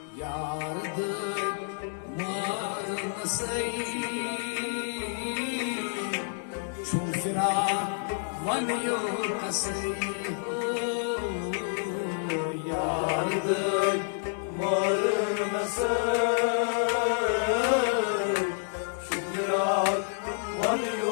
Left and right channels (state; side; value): silent; right; digital silence